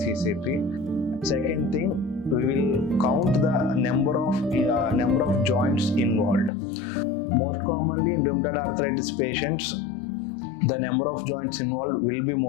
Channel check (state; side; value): drops out; right; at 6.5 s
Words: Second thing, we will count the number of joints involved. Most commonly in rheumatoid arthritis patients, the number of joints involved will be